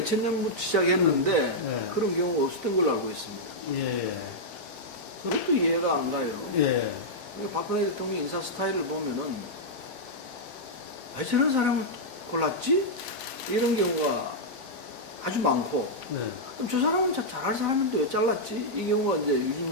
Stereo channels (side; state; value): both; normal; correlation -0.07